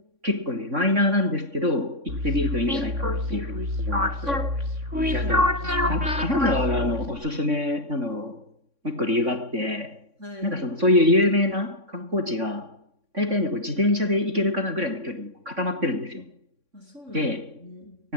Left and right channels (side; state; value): left; late; 3.6 ms